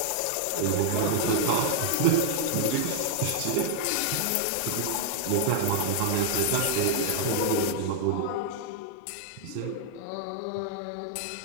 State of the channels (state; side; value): different; both; correlation -0.01